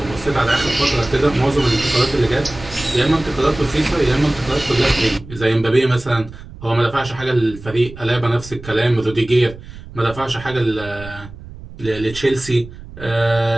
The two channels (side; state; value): right; noise; rumble, 16 dB below the sound